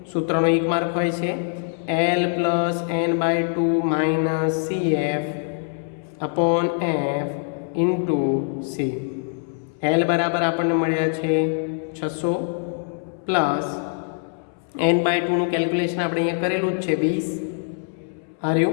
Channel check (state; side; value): silent; right; 63 dB below the other